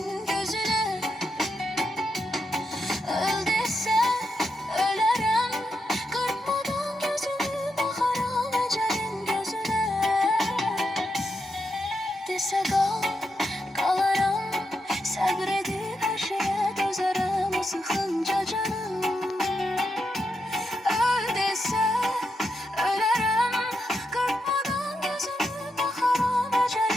gözüne. Öl dese ölerim, kırpmadan gözümü bakaram ecelin gözüne. Dese kal, kalarım, sabredip her şeye dözerim o sıkınca canım. Öl dese ölerim, kırpmadan gözümü bakaram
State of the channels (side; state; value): both; normal; correlation 0.84